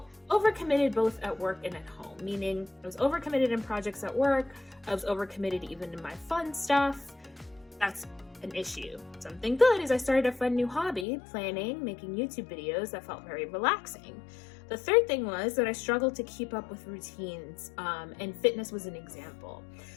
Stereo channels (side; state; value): right; drops out; at 11.1 s